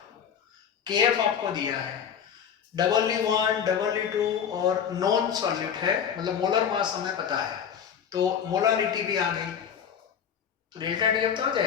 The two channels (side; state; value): right; quieter; 7.9 dB